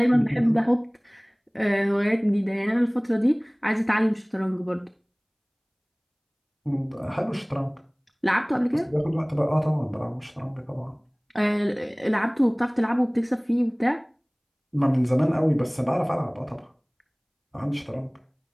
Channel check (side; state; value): both; identical; correlation 1.00